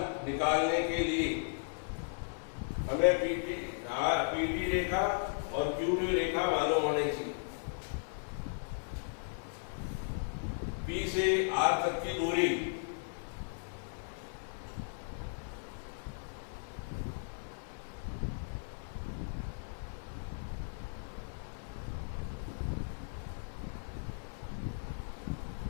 निकालने के लिए हमें PT रेखा और QP रेखा मालूम होनी चाहिए। P से R तक की दूरी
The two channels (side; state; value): right; silent; 54 dB below the other